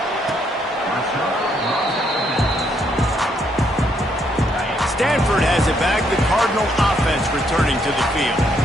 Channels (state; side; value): normal; both; correlation 0.73